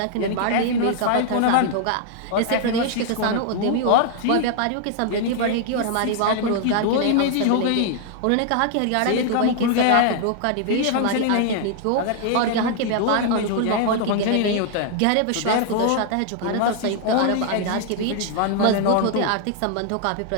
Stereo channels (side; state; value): both; different; correlation 0.00